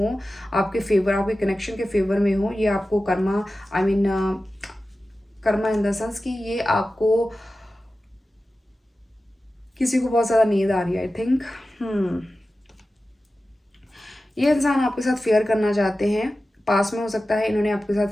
आपके फेवर, आपके कनेक्शन के फेवर में हो। ये आपको Karma, I mean Karma in the sense कि ये आपको, किसी को बहुत ज़्यादा नींद आ रही है आई थिंक। ये इंसान आपके साथ फेयर करना चाहते हैं, पास में हो सकता है इन्होंने आपके साथ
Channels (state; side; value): normal; both; correlation 0.94